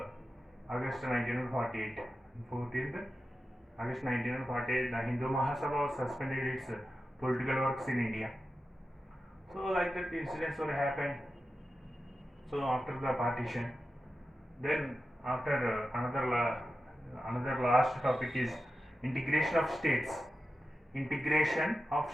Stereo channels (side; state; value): both; normal; correlation 0.92